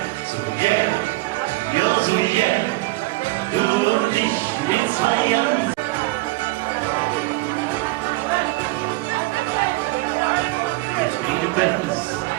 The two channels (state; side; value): quieter; left; 21.3 dB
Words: So jäh, du und ich, wir zwei Jahren. Mit mir Bands,